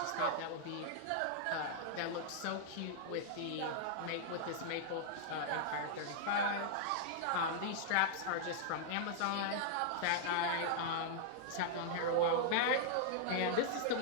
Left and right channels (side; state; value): both; different; correlation -0.01